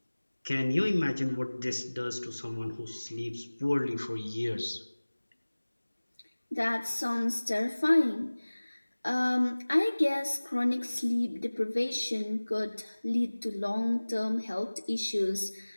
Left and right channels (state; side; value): inverted; both; correlation -1.00